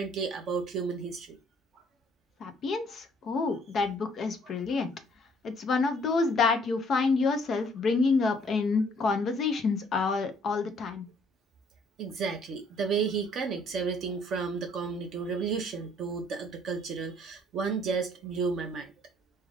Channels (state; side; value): normal; both; correlation 0.62